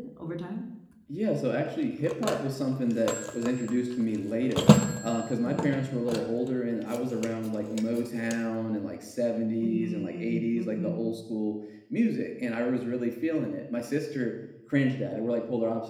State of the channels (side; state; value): both; identical; correlation 1.00